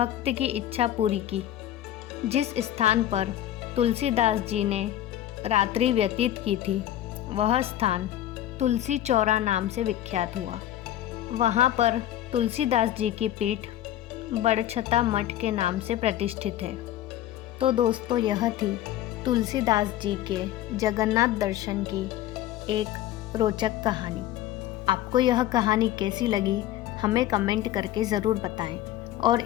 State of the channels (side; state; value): right; quieter; 12.9 dB